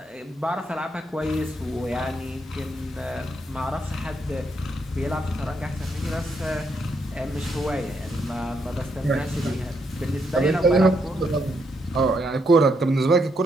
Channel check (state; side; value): normal; both; correlation 0.77